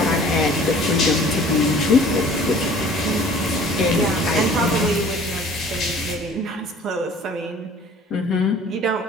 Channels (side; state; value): both; normal; correlation 0.49